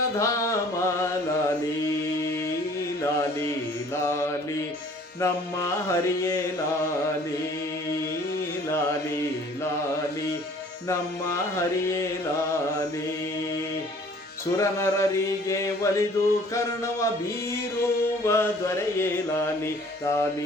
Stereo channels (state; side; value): normal; both; correlation 0.53